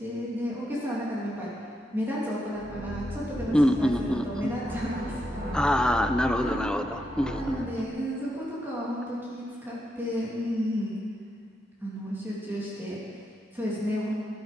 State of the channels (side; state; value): both; normal; correlation 0.82